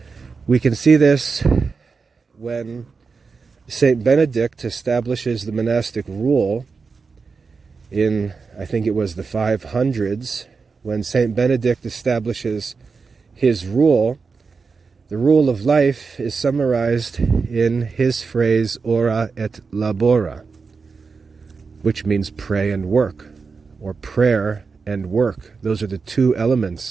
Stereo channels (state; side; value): quieter; left; 4.8 dB